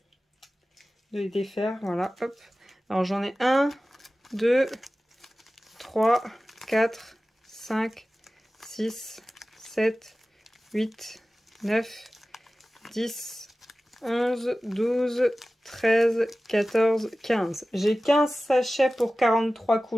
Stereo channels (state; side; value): normal; both; correlation 0.96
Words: défaire. Voilà, hop. Alors j'en ai 1, 2, 3, 4, 5, 6, 7, 8, 9, 10, 11, 12, 13, 14, 15. J'ai 15 sachets pour 43